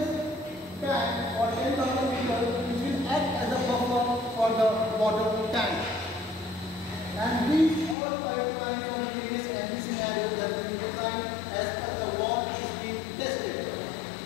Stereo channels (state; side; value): drops out; right; at 8.0 s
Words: tank for 10,000 liters which will act as a buffer for the water tank. And these all pipelines of various MV scenarios have been designed as per the wall is being tested.